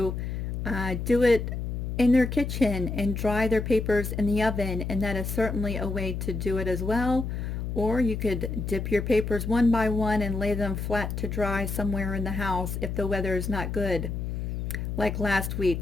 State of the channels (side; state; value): left; noise; hum, 4 dB below the sound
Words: do it in their kitchen and dry their papers in the oven, and that is certainly a way to do it as well. Or you could dip your papers one by one and lay them flat to dry somewhere in the house if the weather is not good. like last